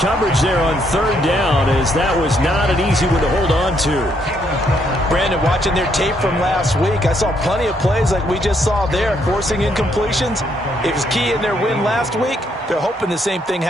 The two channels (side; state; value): both; normal; correlation 0.72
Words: there on 3rd down, as that was not an easy one to hold on to. Brandon, watching their tape from last week, I saw plenty of plays like we just saw there, forcing incompletions. It was key in their win last week. They're hoping the same thing